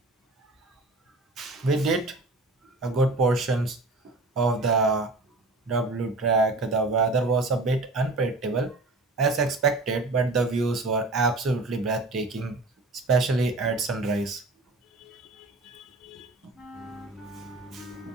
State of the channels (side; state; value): left; quieter; 3.1 dB